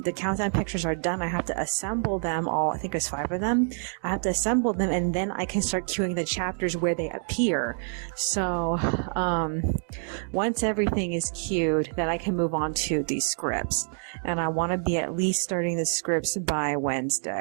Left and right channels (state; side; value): silent; left; 60 dB below the other